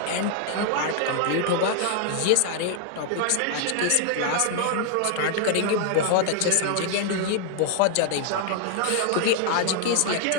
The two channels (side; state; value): both; different; correlation 0.00